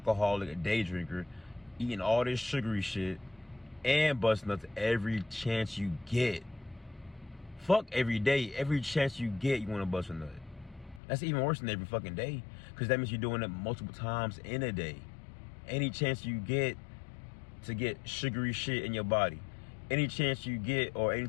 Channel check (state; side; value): drops out; right; at 11.0 s